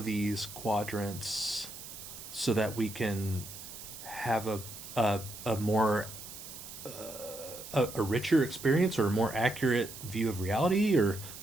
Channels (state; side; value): noise; right; hiss, 12 dB below the sound